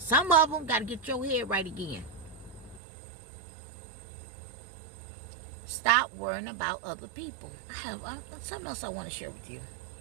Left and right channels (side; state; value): left; drops out; at 2.8 s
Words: of them gotta get your head right again. Stop worrying about other people. I have something else I want to share with you.